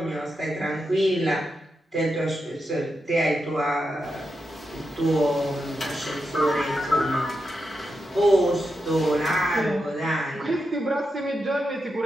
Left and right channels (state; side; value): normal; both; correlation 0.87